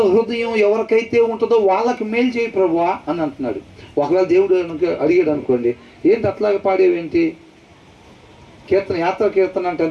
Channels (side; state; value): both; identical; correlation 1.00